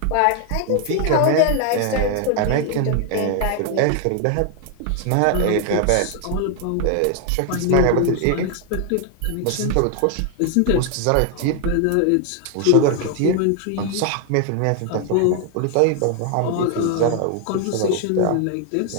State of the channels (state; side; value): different; both; correlation 0.00